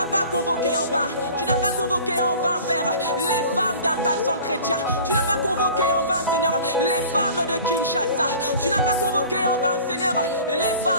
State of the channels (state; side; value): inverted; both; correlation -0.43